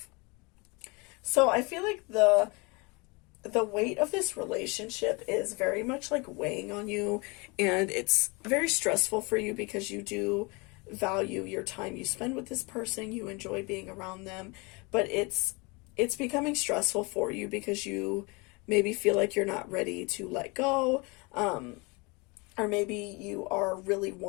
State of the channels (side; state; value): right; quieter; 28.0 dB